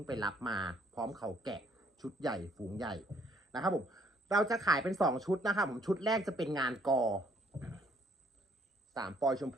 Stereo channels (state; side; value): normal; both; correlation 0.65